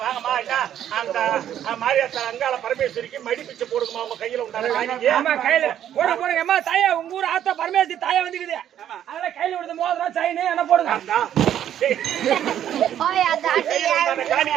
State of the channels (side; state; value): left; quieter; 10.5 dB